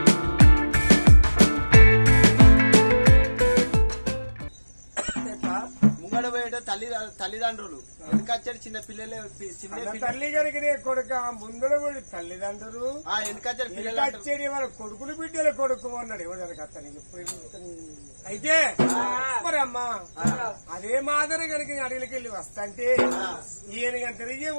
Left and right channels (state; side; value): inverted; both; correlation -1.00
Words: తల్లిదండ్రులు వెనకచ్చాడు చిన్న పిల్లలే తల్లి గారికి కొడుక ముందర కూడా తల్లిదండ్రులు వెనకచ్చాడు పిల్లలు వాళ్ళ కొడుకులు బిడ్డల కొడుకు అన్నాడు ఎవరికి అతనికి అయితే మరి అమ్మా అదే మాదిరి కనుక అడవికి వెళ్ళి వస్తాంటే ఈయన గంట తిరిగే